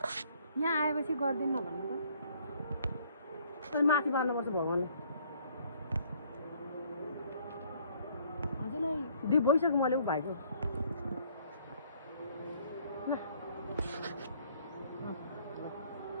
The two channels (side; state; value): both; inverted; correlation -0.62